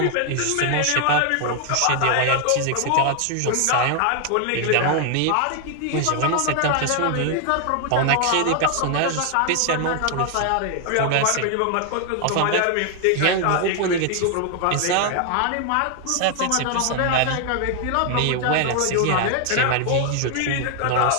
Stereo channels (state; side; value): different; both; correlation 0.00